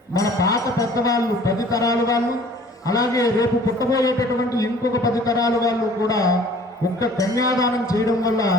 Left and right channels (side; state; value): both; normal; correlation 0.51